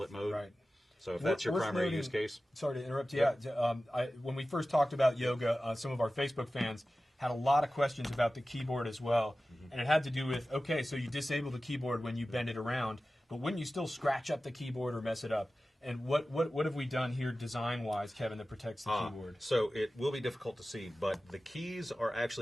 mode. Right. So if that's your primary use case. Sorry to interrupt you. When we first talked about Yoga, some of our Facebook fans had a lot of questions about the keyboard as well. And it had to do with, okay, so you disable the keyboard when you bend it around, but wouldn't you still scratch up the keyboard or mess it up? And what have we done here design-wise, Kevin, that protects the keyboard? So it will be difficult to see, but the keys are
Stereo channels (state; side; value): normal; both; correlation 0.95